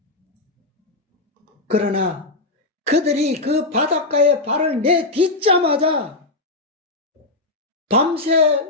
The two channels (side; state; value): right; quieter; 3.0 dB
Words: 그러나 그들이 그 바닷가에 발을 내딛자마자 밤새